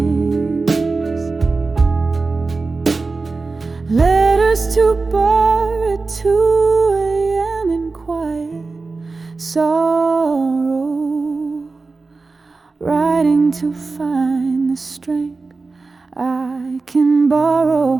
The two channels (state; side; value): quieter; left; 3.9 dB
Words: us to bar at 2 a.m. in quiet sorrow, riding to find the strength I can borrow,